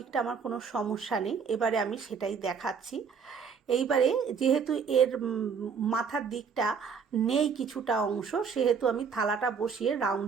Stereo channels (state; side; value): quieter; left; 6.1 dB